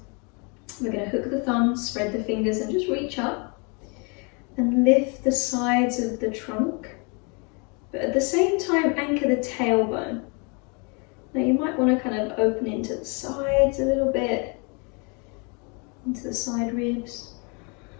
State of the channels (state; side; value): quieter; right; 33.6 dB